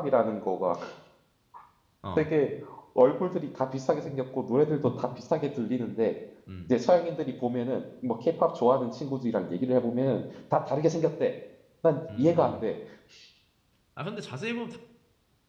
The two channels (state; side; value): identical; both; correlation 1.00